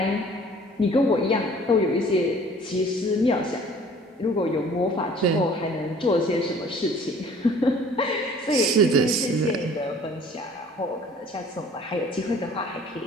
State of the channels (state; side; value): normal; both; correlation 0.51